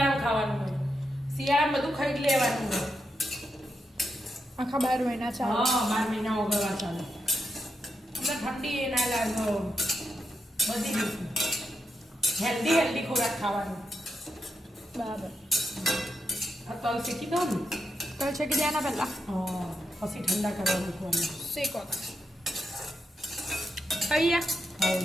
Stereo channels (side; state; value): both; normal; correlation 0.85